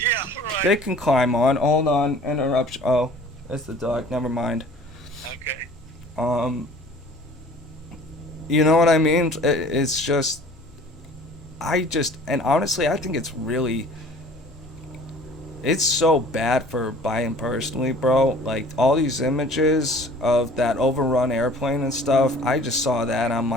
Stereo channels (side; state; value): both; normal; correlation 0.48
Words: They right. can climb on. Hold on, interruption. Oh, it's the dog. Never mind. Okay. Um, you know what I mean? It's just, and honestly, I think it's so bad for Biden personally, bro. Like all these images of that overrun airplane and stuff, I just saw that. And I'm